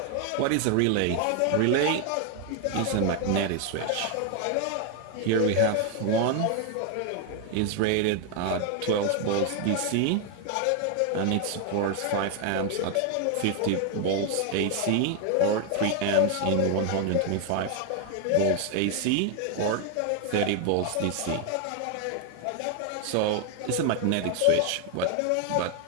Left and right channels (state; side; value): different; both; correlation 0.01